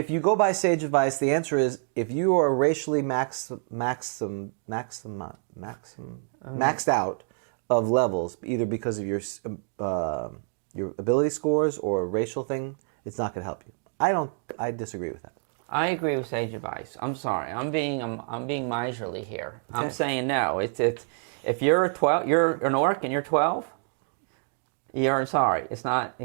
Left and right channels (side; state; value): left; silent; 56 dB below the other